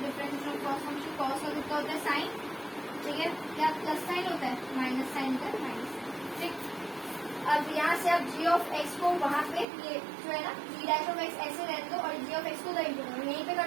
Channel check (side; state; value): left; drops out; at 9.7 s